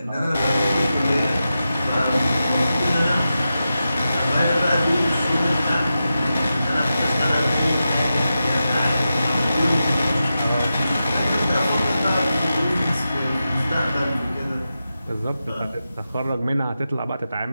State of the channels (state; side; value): inverted; both; correlation -0.91